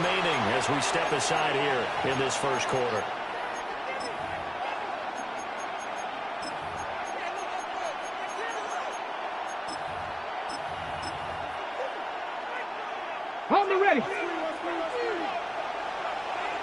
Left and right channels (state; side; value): identical; both; correlation 1.00